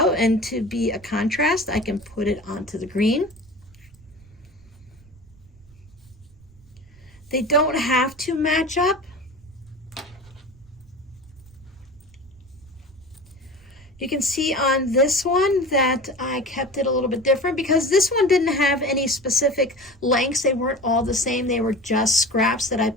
and to be a contrast, I can put it onto the green. They don't have to match up. You can see on this one that I kept it a little bit different because this one didn't have any specific lengths. They weren't all the same. They were just scraps that I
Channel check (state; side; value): noise; right; rumble, 26 dB below the sound